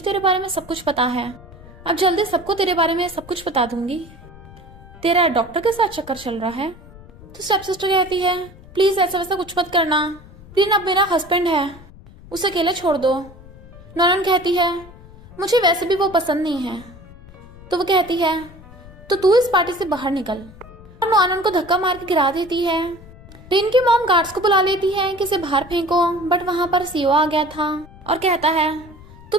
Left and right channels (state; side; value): noise; left; rumble, 20 dB below the sound